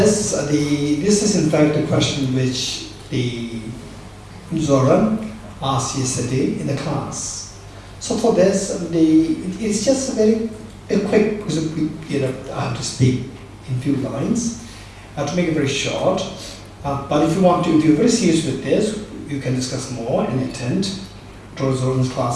this is in fact a question which the Zoran asked yesterday in the class. So for this, it's just a quick, because I have to speak in few lines. I have to make it very short. But if you want to, if you're very serious with this, you can discuss more and attend Dr. Zoran's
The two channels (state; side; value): identical; both; correlation 1.00